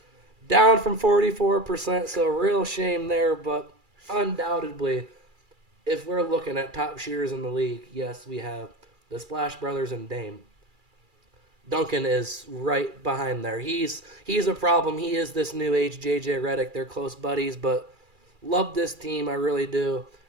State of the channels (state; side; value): late; left; 2.3 ms